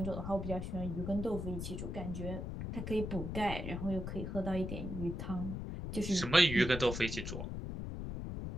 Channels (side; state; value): left; noise; rumble, 5 dB below the sound